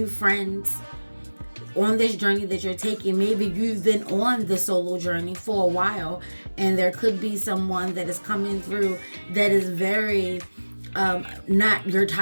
friends. on this journey that you're taking. Maybe you've been on the solo journey for a while, and there could be someone that is coming through that is very not your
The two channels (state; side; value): inverted; both; correlation -1.00